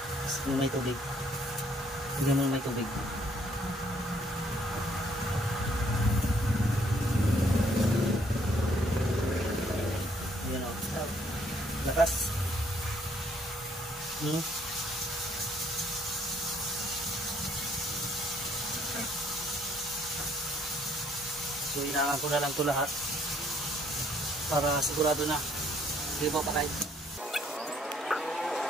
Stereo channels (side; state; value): both; normal; correlation 0.66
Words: Sige may tubig. Sige mo may tubig. Ayan o. Lakas. So inaangan ko na lang ito lahat para sigurado na hindi ba patay.